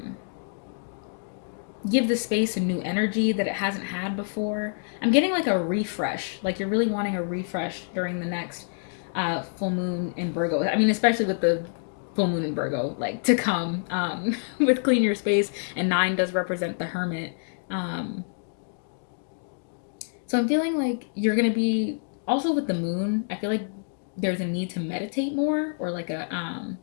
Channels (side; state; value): right; silent; digital silence